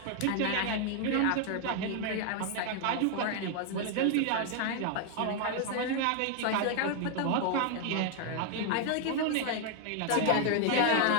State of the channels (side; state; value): both; different; correlation 0.00